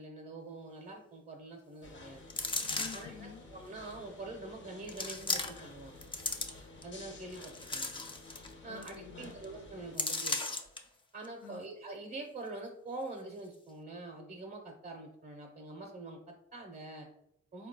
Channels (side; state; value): both; normal; correlation 0.04